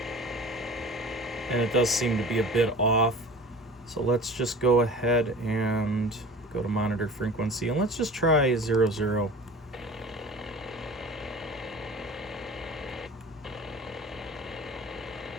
And it does seem to be a bit off. So let's just go ahead and go to monitor frequency, and let's just try 00.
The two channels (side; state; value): both; normal; correlation 0.39